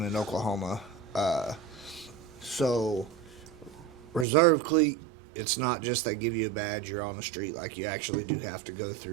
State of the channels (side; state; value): left; drops out; at 4.2 s